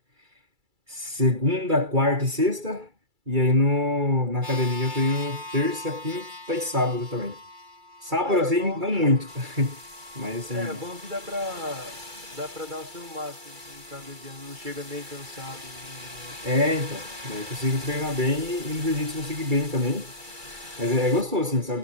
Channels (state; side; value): late; left; 2.3 ms